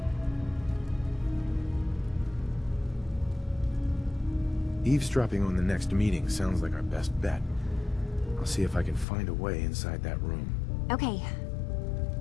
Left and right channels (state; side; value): drops out; right; at 9.1 s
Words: Eavesdropping on the next meeting sounds like our best bet. I'll see if I can find a way inside that room. Okay.